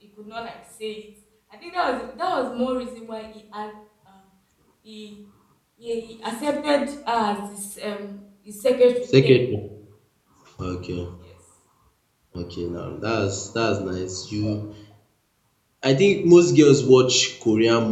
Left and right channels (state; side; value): identical; both; correlation 1.00